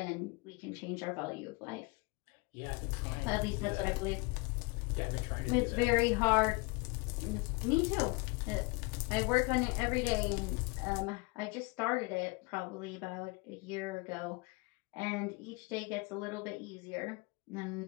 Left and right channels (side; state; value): right; quieter; 27.8 dB